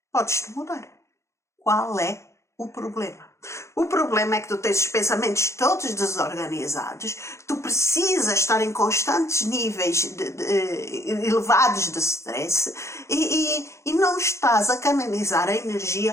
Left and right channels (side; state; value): right; late; 0.14 ms